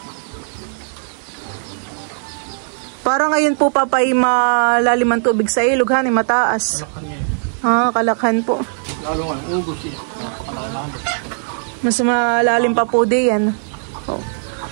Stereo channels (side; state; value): left; silent; digital silence